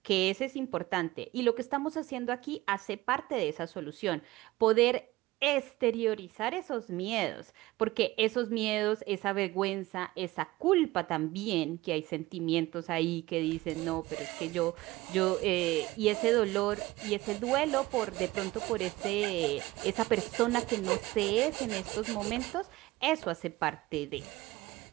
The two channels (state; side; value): quieter; left; 18.8 dB